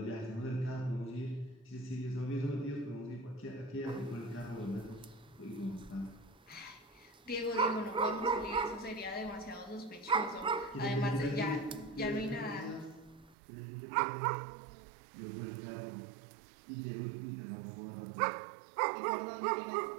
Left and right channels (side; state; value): left; drops out; at 13.4 s